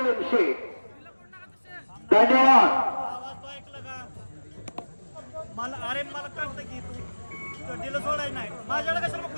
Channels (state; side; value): inverted; both; correlation -1.00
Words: धन्यवाद मला कळतं की तू दिलं सोडाय नाही माझ्याकडे कसं मग